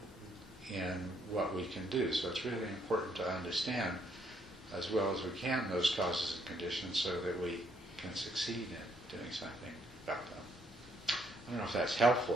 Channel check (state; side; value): normal; both; correlation 0.71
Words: what we can do. So it's really important to understand as well as we can those causes and conditions so that we can succeed in doing something about them. I don't know if that's